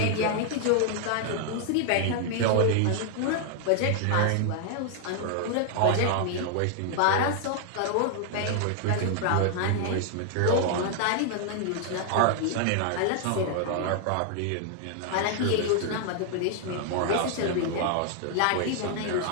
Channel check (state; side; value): different; both; correlation 0.00